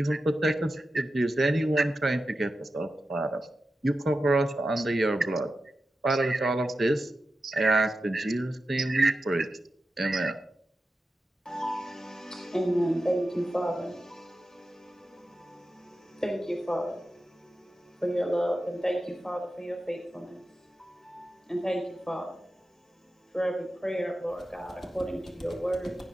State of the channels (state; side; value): normal; both; correlation 0.91